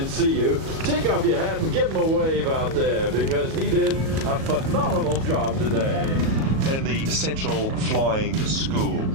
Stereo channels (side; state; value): left; late; 37 ms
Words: see you. Take off your hat and give him a wave out there, because he did a phenomenal job today. And the Central Flying School.